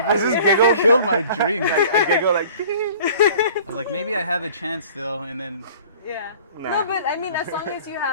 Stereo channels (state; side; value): inverted; both; correlation -0.48